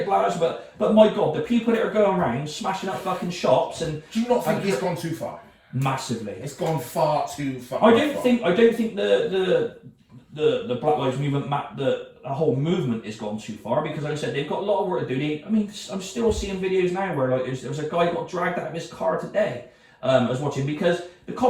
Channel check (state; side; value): identical; both; correlation 1.00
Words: black lives, but my God, the people that are going around smashing up fucking shops and do you not think it's gone too far? Massively. It's gone far too far. I don't think the Black Lives Movement, the whole movement has gone too far because, like I said, they've got a lot of work to do. I'm still seeing videos now where like there was a guy got dragged out of his car today. I was watching because the